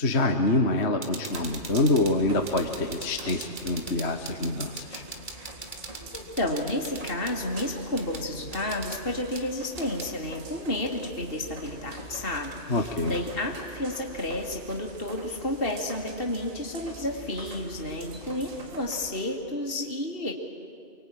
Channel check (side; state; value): right; late; 2.7 ms